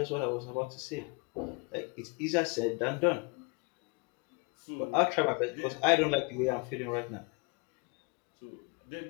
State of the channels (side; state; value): right; quieter; 32.2 dB